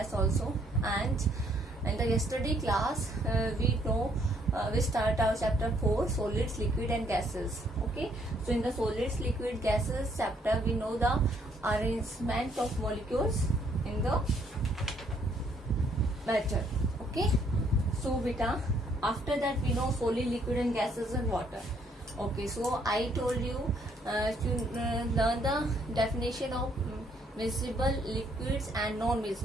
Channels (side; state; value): both; normal; correlation 0.68